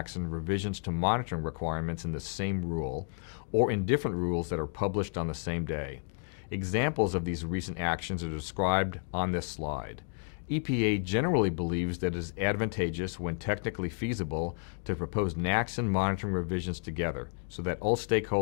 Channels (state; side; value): silent; right; digital silence